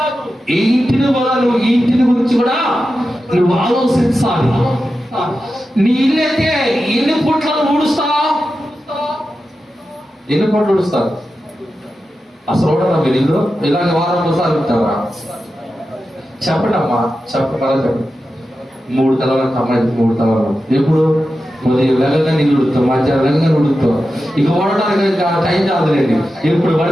ఈ ఇంటిని కూడా నువ్వు ఈ ఇంటిని గురించి కూడా నువ్వు ఆలోచించాలి. నీ ఇల్లు అయితే ఎన్ని పుట్లను ఊడుస్తావు? ఎన్ని పుట్లు ఊడుస్తారు? అసలు చూడరా మీరు ఇల్లు ఇలాగ వారం ఒకసారి ఉంటారా? చెప్పండి అమ్మా, చెప్పండి. 3 తలలకు అమ్మాయి 3 తలలు. ఎప్పుడు ఉదయం వెళ్ళగా నీళ్ళు ఉడుతాం, మధ్యాహ్నం వెళ్ళగా ఉడుకుతాం. ఇక వాడటానికి టైం కాదులేండి. ఎప్పుడు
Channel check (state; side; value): normal; both; correlation 0.91